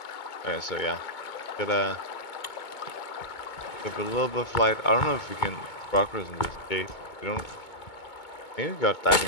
Okay, so yeah, get a little bit of light. I don't know if we can progress in this cave. We don't. Maybe we got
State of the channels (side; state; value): right; late; 2.2 ms